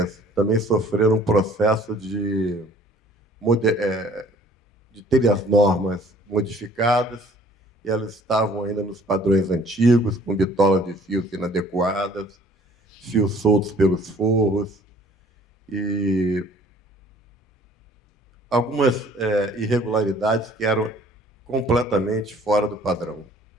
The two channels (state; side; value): normal; both; correlation 0.55